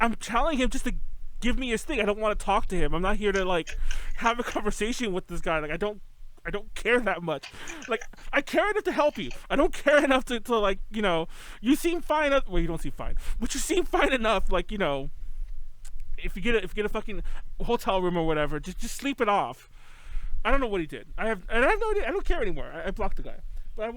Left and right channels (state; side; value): identical; both; correlation 1.00